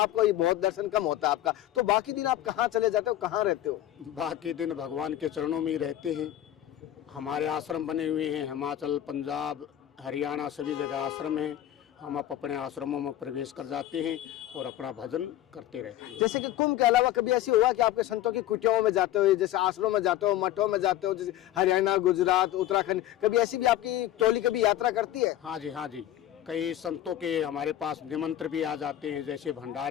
ये बहुत दर्शन कम होता है आपका, तो बाकी दिन आप कहाँ चले जाते हो, कहाँ रहते हो? बाकी दिन भगवान के चरणों में ही रहते हैं। हमारे आश्रम बने हुए हैं, हिमाचल, पंजाब, हरियाणा सभी जगह आश्रम हैं। हम अपने आश्रमों में प्रवेश कर जाते हैं और अपना भजन करते रहते हैं। जैसे कि कुंभ के अलावा कभी ऐसी हुआ कि आपके संतों की कुटियाओं में जाते हो, जैसे आश्रमों में जाते हो, मठों में जाते हो, जैसे हरियाणा, गुजरात, उत्तराखंड, कभी ऐसी भी आपकी टोली कभी यात्रा करती है? हाँ जी, हाँ जी, कई संतों के हमारे पास निमंत्रण भी आ जाते हैं, जैसे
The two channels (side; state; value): right; quieter; 12.7 dB